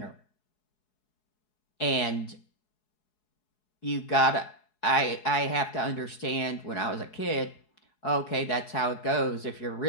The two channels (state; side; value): late; right; 4.7 ms